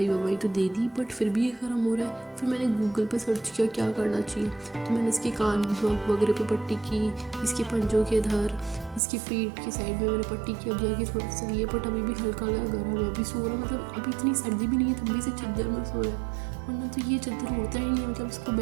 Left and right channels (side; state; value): left; drops out; at 9.0 s